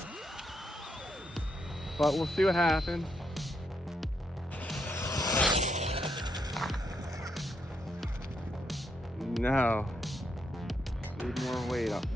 but we'll see what happens. No, need more weight up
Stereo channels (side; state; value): both; normal; correlation 0.78